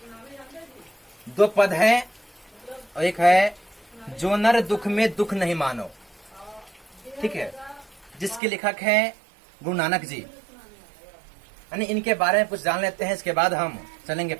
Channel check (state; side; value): drops out; left; at 8.4 s